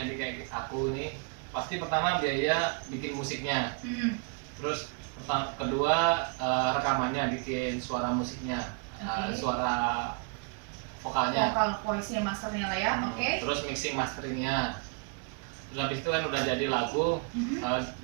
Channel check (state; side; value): quieter; left; 33.9 dB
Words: indie kayak aku nih, pasti pertama biaya bikin musiknya. Terus kedua rekamannya, bikin suara musiknya, suara vokalnya. Vokal voice-nya, masternya lah ya, Terus mixing masteringnya. Terus habis itu kan udah jadi lagu,